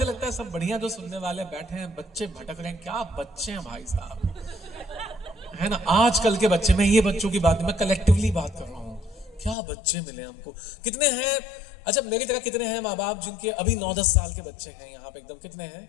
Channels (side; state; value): right; drops out; at 9.6 s